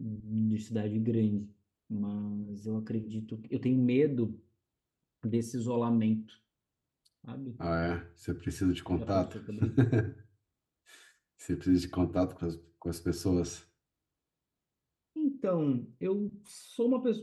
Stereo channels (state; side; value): identical; both; correlation 1.00